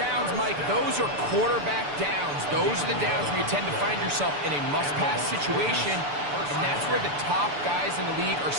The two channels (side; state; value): left; late; 6.9 ms